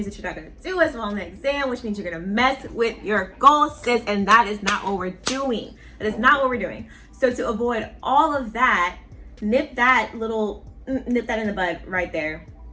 that you're not going to do as well on the exam, which means you're going to mess with your goals, sis. And that is not what we're doing. That is not what we're doing. So to avoid all of that, nip that in the bud right there.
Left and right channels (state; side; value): identical; both; correlation 1.00